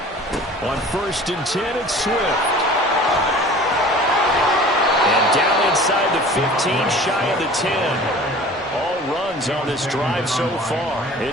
On 1st and 10, it's Swift. And down inside the 15, shy of the 10. All runs on this drive so far.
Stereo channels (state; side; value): normal; both; correlation 0.44